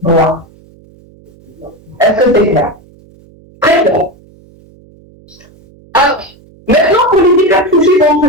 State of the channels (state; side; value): noise; right; hum, 27 dB below the sound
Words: Est-ce que c'est clair? Très bien. Alors, maintenant pour les hypertrophies